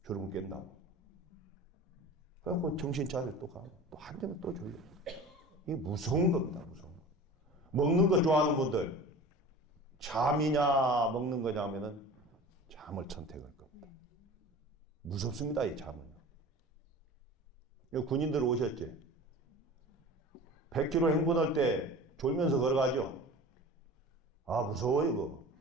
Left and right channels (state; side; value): normal; both; correlation 0.38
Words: 졸음 깬다고. 그래갖고 정신 차려 또 가고 또 한잔은 또 졸려. 이게 무서운 겁니다. 무서운 거. 먹는 거 좋아하는 분들 잠이냐 먹는 거냐 하면은 잠을 선택할 겁니다. 무섭습니다. 이 잠은요. 군인들 오셨지? 100km 행군할 때 졸면서 걸어가죠? 아, 무서워요, 그거.